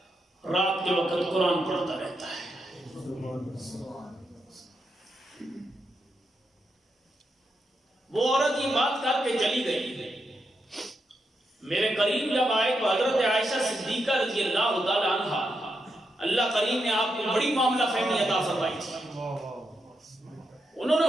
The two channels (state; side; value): normal; both; correlation 0.84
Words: رات کے وقت قرآن پڑھتا رہتا ہے. وہ عورت یہ بات کر کے چلی گئی. میرے قریب جب آئے تو حضرت عائشہ صدیقہ رضی اللہ تعالیٰ عنہ، اللہ کریم نے آپ کو بڑی معاملہ فہمی عطا فرمائی تھی. انہوں نے